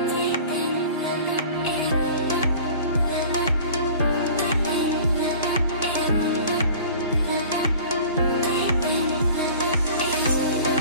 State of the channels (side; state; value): both; inverted; correlation -0.43